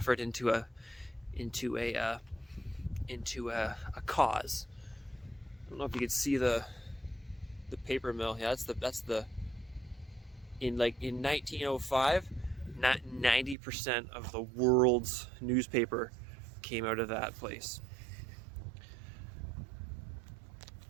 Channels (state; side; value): drops out; left; at 13.6 s